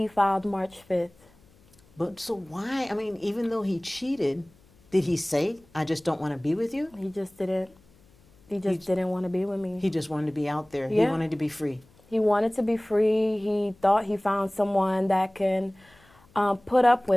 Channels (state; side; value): noise; left; hum, 30 dB below the sound